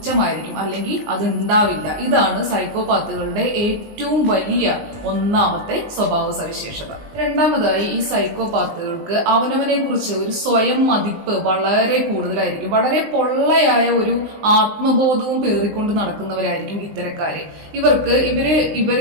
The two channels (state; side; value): late; left; 19 ms